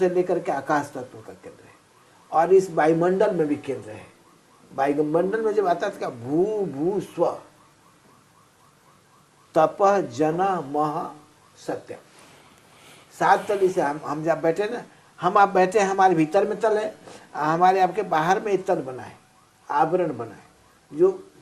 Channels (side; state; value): both; identical; correlation 1.00